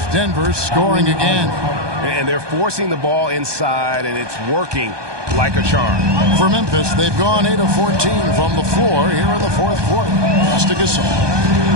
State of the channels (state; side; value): late; left; 1.2 ms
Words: Denver scoring again. And they're forcing the ball inside, and it's working like a charm. For Memphis, they've gone 8 of 14 from the floor here in the fourth quarter. Pass to Gasol.